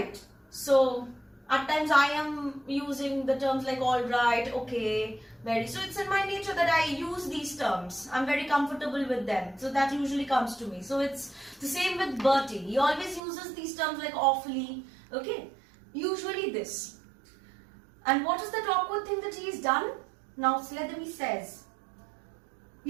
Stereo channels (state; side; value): drops out; left; at 13.2 s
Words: So, at times I am using the terms like alright, okay, very. So it's in my nature that I use these terms. I'm very comfortable with them. So that usually comes to me. So it's the same with Bertie. He always uses these terms like awfully, okay. Usually this. And what is that awkward thing that he's done? Now Sletherby says,